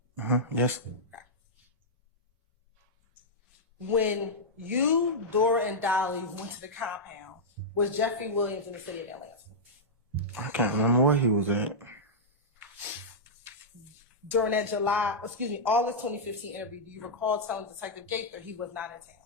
Yes. Okay. When you, Dora, and Dolly went to the compound, was Jeffrey Williams in the city of Atlanta? I can't remember where he was at. During that August 2015 interview, do you recall telling Detective Gaither he was not in town?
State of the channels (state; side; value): normal; both; correlation -0.09